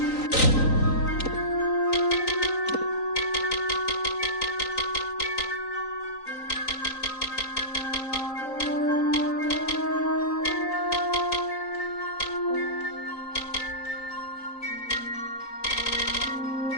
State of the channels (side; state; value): right; late; 3.9 ms